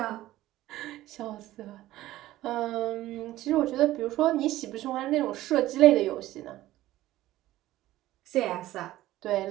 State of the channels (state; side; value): quieter; left; 15.5 dB